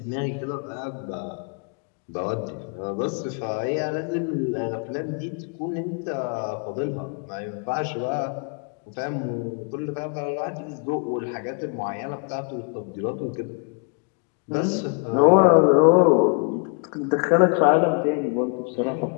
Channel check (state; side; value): quieter; right; 37.6 dB